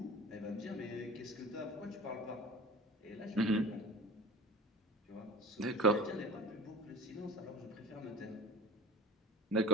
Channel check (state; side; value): normal; both; correlation 0.37